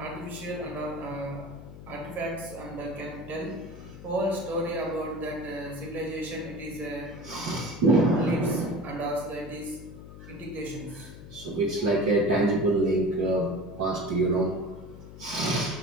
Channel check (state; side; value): noise; left; hum, 14 dB below the sound